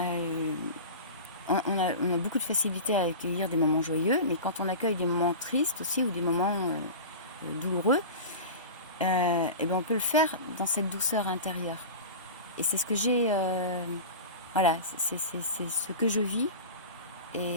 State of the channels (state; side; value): inverted; both; correlation -0.30